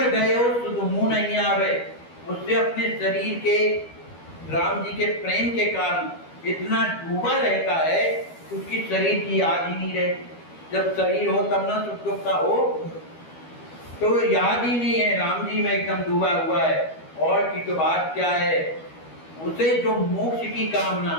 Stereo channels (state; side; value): late; right; 12 ms